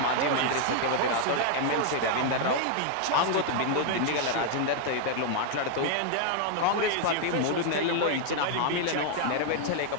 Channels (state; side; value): different; both; correlation 0.00